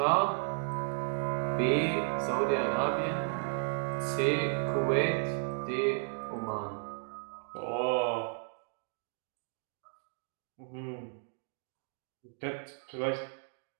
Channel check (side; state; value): left; silent; 55 dB below the other